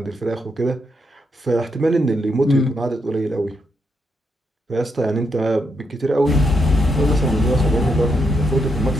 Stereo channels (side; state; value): both; normal; correlation 0.80